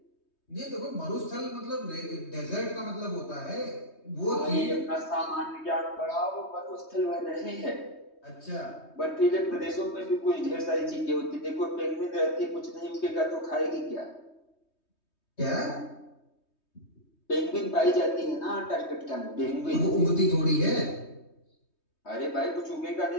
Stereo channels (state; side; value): late; right; 3.2 ms